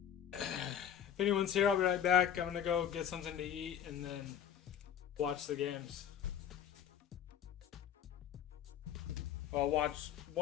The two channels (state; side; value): quieter; right; 9.3 dB